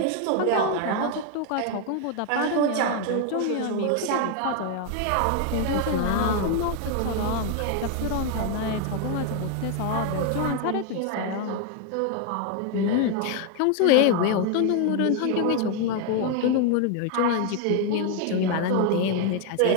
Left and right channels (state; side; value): different; both; correlation 0.01